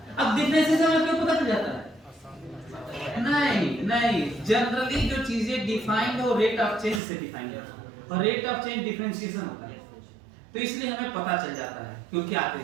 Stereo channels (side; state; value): left; drops out; at 7.0 s